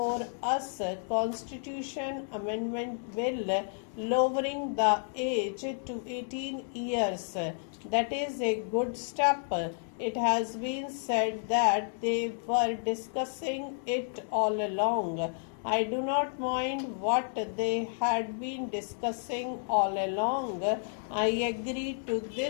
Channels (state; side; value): silent; right; 57 dB below the other